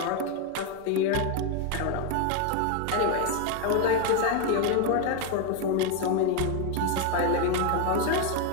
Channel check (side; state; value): both; different; correlation 0.01